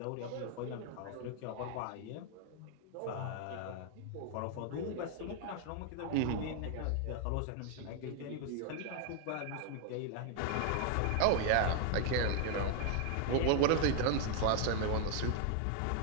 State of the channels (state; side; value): different; both; correlation 0.00